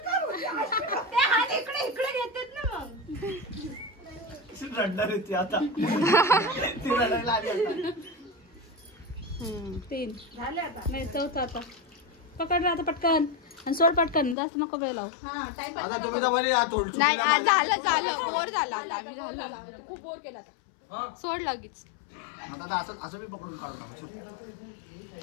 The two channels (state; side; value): drops out; right; at 14.4 s